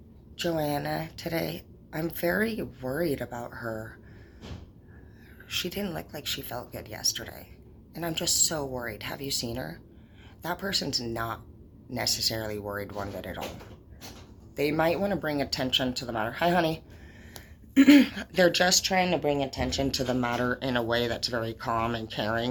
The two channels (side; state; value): both; identical; correlation 1.00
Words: Joanna today? I'm very worried about her. She didn't look like she felt good yesterday. And I'm just so worried. Have you seen her?" That person's not necessarily worried one bit at all. They might want to bring attention to the matter. Hi, honey. They're just trying to bring attention to the matter in a way that's very calm and